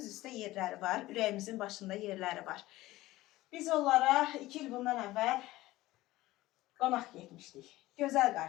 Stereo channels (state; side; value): quieter; right; 17.4 dB